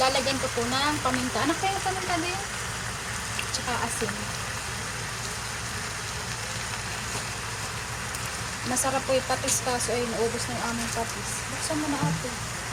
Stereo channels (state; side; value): identical; both; correlation 1.00